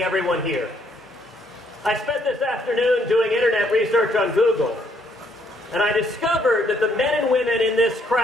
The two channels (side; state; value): both; normal; correlation 0.69